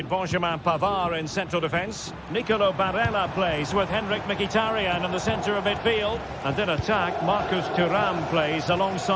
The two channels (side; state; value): both; identical; correlation 1.00